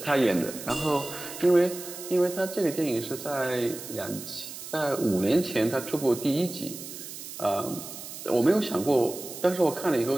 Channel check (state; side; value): noise; right; hiss, 11 dB below the sound